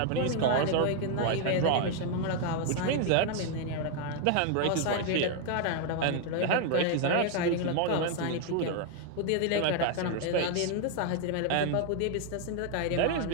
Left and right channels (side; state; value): both; different; correlation 0.00